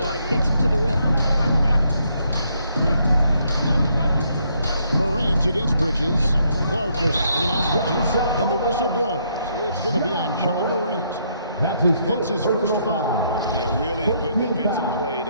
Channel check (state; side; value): inverted; both; correlation -0.73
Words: gets him to the rim. Morant against Bridges. Clark is in on Bridges, and the whistle blows. It's going to be on John Morant. That's his first foul. Yeah, really good defensive play